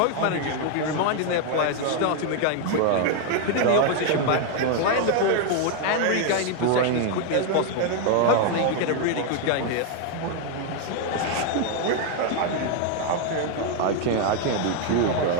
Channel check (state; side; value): different; both; correlation 0.01